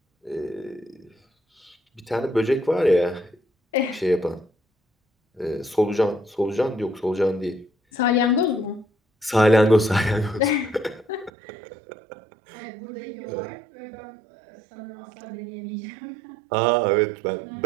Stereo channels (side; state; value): left; drops out; at 11.3 s